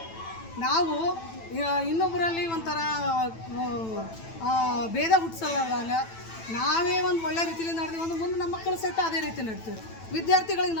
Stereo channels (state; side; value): late; right; 9.0 ms